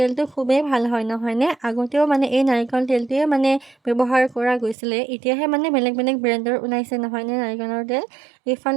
খুবেই ভাল হয়, নহয়নে? আগতেও এই নাৰিকল তেলটোৱে ব্যৱহাৰ কৰা গৈছিলে। এতিয়াহে বেলেগ বেলেগ ব্ৰেণ্ডৰ ওলাইছে, নহয়নে নাৰিকলৰ তেল।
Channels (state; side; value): drops out; left; at 4.8 s